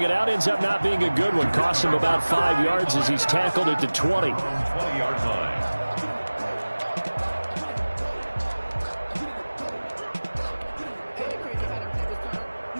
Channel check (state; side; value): inverted; both; correlation -1.00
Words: it out ends up not being a good one. Cost him about 5 yards as he's tackled at the 20. 20-yard line.